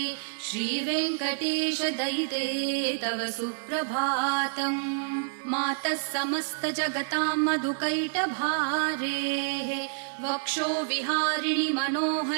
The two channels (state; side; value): silent; left; digital silence